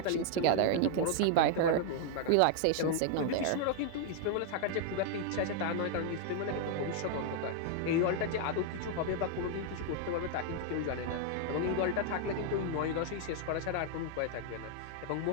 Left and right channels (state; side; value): different; both; correlation 0.00